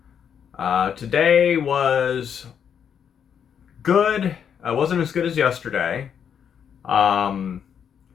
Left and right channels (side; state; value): right; quieter; 8.0 dB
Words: Today was good. It wasn't as good as yesterday. It